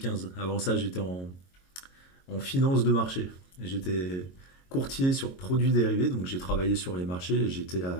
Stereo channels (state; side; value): late; right; 22 ms